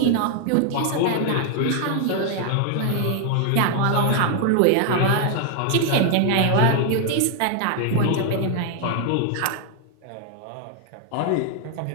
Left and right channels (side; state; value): both; different; correlation 0.00